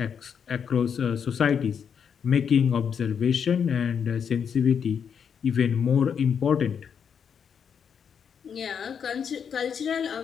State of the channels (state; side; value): quieter; right; 7.3 dB